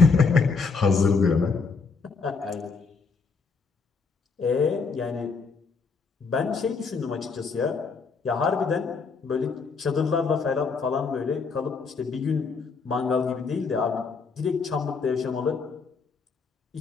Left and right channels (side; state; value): right; quieter; 4.9 dB